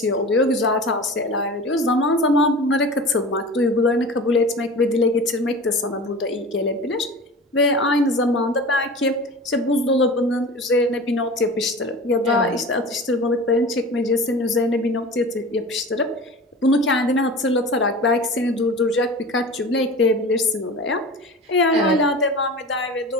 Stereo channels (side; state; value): both; normal; correlation 0.35